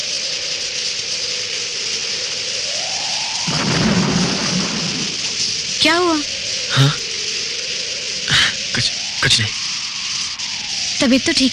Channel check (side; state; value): both; identical; correlation 1.00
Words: क्या हुआ? हाँ? कुछ नहीं। तबीयत तो